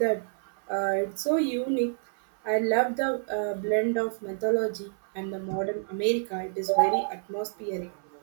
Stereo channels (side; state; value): left; silent; 56 dB below the other